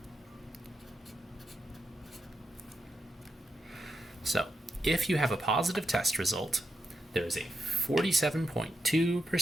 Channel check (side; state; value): both; normal; correlation 0.85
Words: So, if you have a positive test result, there is a